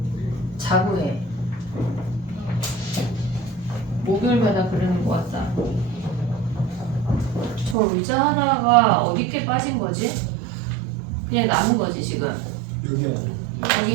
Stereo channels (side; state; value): left; drops out; at 7.8 s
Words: 해. 목요일마다 그러는 것 같다. 저 의자 하나가 어디께 빠진 거지? 그냥 남은 거지 지금. 여기 아니에요.